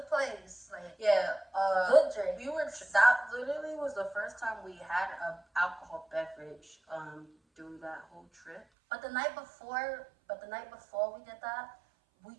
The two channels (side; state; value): left; drops out; at 8.7 s